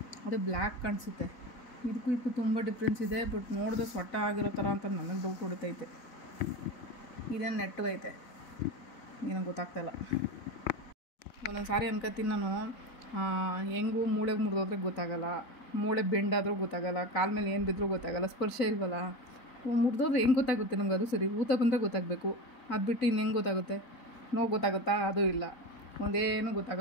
ಅದು ಬ್ಲ್ಯಾಕ್ ಕಾಣಿಸುತ್ತೆ. ಇದಕ್ಕೂ ತುಂಬ ಡಿಫ್ರೆನ್ಸ್ ಇದೆ. ಬಟ್ ನೋಡಿದ್ರೆ ಸೊಟ್ಟ ಆಗಿರೋ ಥರ ಅಂತ ನನಗೆ ಡೌಟ್ ಹೊಡಿತೈತೆ. ಇದೇನು ನೆಟ್ಟಗೈತೆ ಏನೋ ಗೊತ್ತಾಗ್ತಾಯಿಲ್ಲ. ಒಂದೊಂದು ಸಾರಿ ಅನ್ಕೋತೀನಿ ನಾನು, ಹೆಂಗೂ ಮೂಳೆಗೆ ಮುರಿದೋದ್ರೆ ಗೊತ್ತಾಗಲ್ಲ, ಮೂಳೆ ಬೆಂಡಾದರೂ ಗೊತ್ತಾಗಲ್ಲ, ಕಾಲ ಮೇಲೆ ಏನು ಬಿದ್ದರೂ ಗೊತ್ತಾಗಲ್ಲ, ಸ್ಪರ್ಶ ಇಲ್ವಲ್ಲ. ಮುರಿದೋದ್ರೆ ಹೆಂಗೆ ಗೊತ್ತಾಗುತ್ತೆ ನಮ್ಗೆ? ಅದು ಸರಿ, ಊತ ಬಂದರೆ ಗೊತ್ತಾಗಬೇಕು, ಅದು ಬಿಟ್ಟು ಇನ್ನು ಹೆಂಗೆ ಗೊತ್ತಾಗುತ್ತೆ? ನೋವು ಗೊತ್ತಾಗುತ್ತಾ? ಅದು ಇಲ್ಲ, ಒಂದೇನು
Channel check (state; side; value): late; right; 4.1 ms